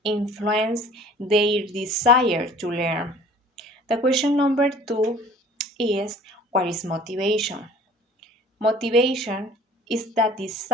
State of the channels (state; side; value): normal; both; correlation 0.47